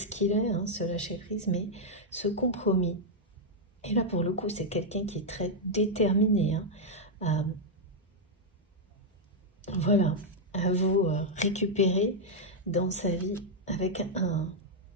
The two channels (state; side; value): normal; both; correlation -0.03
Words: qu'il est, hein, ce lâcher-prise, mais ce compromis. Et là, pour le coup, c'est quelqu'un qui est très déterminé, hein, voilà, à vous récupérer dans sa vie avec